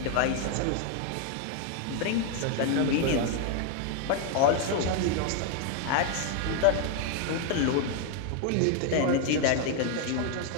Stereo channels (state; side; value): different; both; correlation 0.01